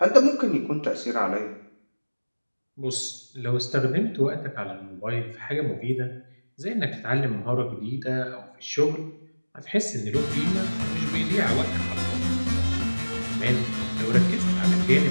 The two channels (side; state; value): both; inverted; correlation -1.00